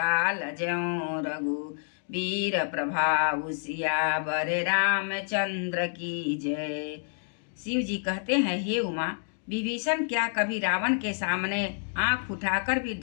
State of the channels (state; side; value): silent; right; digital silence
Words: ज्यों, रघुवीर प्रभाव सियावर रामचंद्र की जय। शिव जी कहते हैं, हे उमा, विभीषण क्या कभी रावण के सामने आंख उठाकर भी